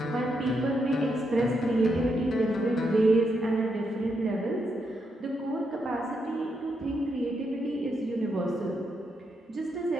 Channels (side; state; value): both; normal; correlation 0.81